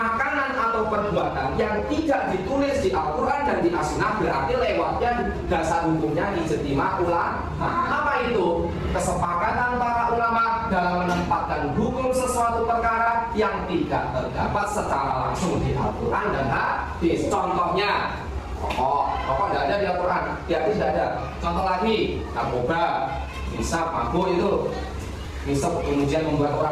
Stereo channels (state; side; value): identical; both; correlation 1.00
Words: atau perbuatan yang tidak ditulis di Al-Quran dan di As-Sunnah berarti lewatnya dasar hukumnya ijtima ulama. Apa itu? Kesepakatan para ulama dalam menempatkan hukum sesuatu perkara yang tidak terdapat secara langsung di Al-Quran dan hadis. Contohnya rokok tidak ada di Al-Quran, di hadis tidak ada. Contoh lagi, narkoba, hisab, mabuk itu misal kemudian membuat